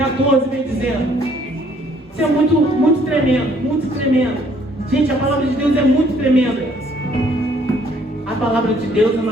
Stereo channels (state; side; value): normal; both; correlation 0.62